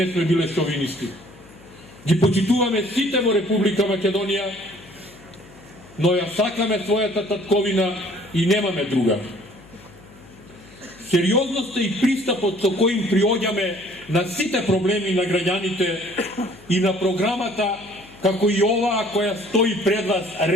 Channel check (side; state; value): left; noise; hum, 23 dB below the sound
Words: сме биле шовинисти. Ги почитуваме сите во Република Македонија, но ја сакаме својата татковина и немаме друга. Сериозноста и пристапот со коим приоѓаме на сите проблеми на граѓаните и на програмата, како и оваа која стои пред вас